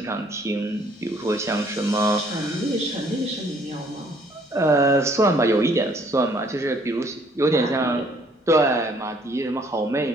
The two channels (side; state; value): both; normal; correlation 0.62